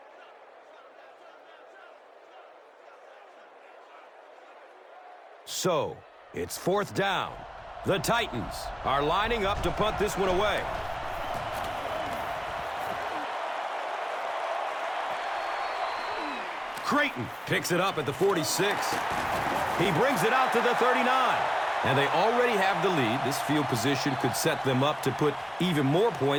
So, it's 4th down. The Titans are lining up to punt this one away. Creighton picks it up at the 46. He brings it out to the 39. And they already have the lead. This field position could set them up to put even more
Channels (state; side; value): identical; both; correlation 1.00